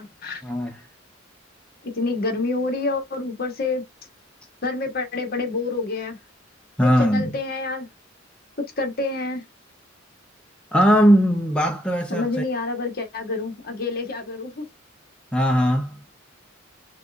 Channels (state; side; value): normal; both; correlation 0.67